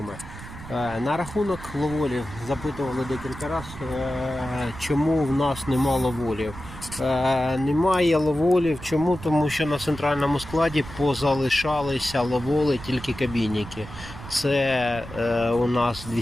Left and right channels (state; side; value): noise; right; rumble, 14 dB below the sound